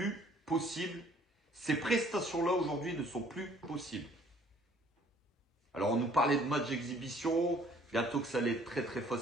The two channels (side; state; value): both; normal; correlation 0.58